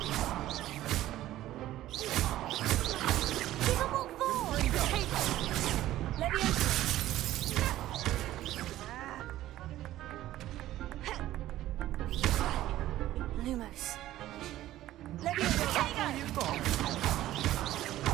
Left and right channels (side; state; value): left; quieter; 14.4 dB